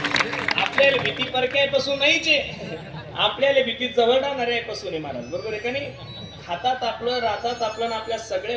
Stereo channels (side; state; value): both; identical; correlation 1.00